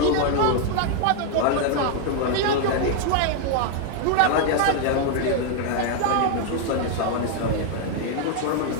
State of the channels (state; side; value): different; both; correlation 0.00